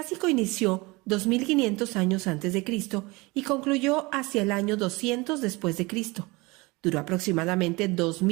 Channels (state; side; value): quieter; left; 24.1 dB